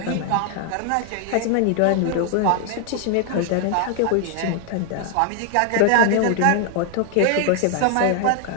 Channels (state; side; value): different; both; correlation 0.00